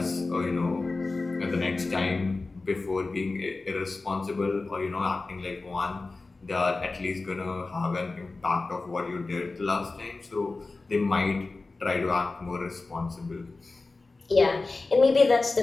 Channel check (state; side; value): quieter; right; 3.5 dB